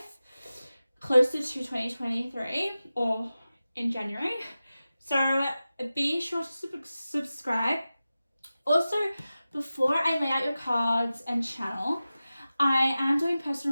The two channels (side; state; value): both; inverted; correlation -0.95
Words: closer to 2023 or in January. So be sure to subscribe. Also, before I lay out your cards and channel, I am doing